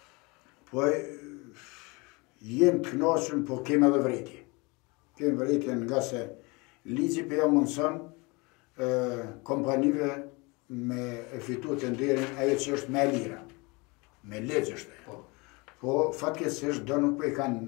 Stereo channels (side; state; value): right; quieter; 26.9 dB